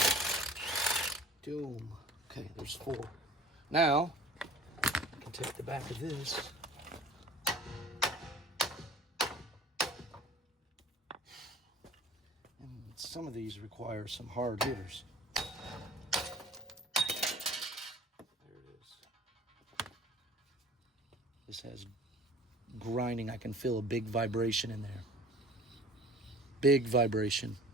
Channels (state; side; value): normal; both; correlation 0.45